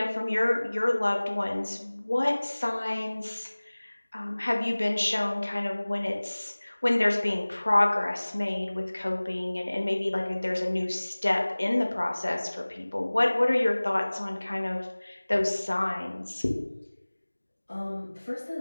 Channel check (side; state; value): both; inverted; correlation -1.00